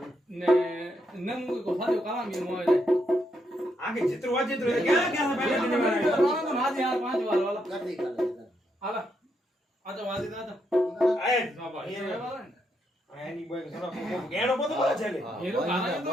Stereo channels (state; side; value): normal; both; correlation 0.79